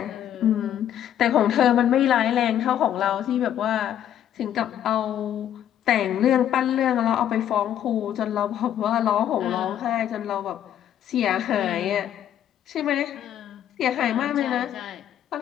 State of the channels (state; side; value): quieter; right; 10.5 dB